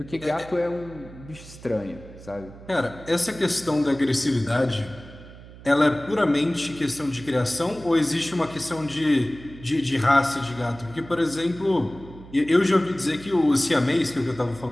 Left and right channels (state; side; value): noise; right; hum, 18 dB below the sound